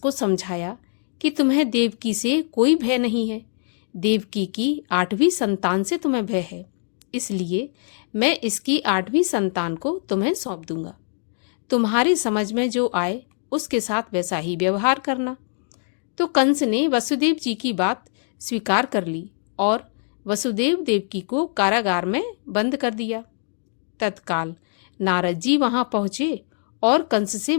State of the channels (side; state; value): right; silent; digital silence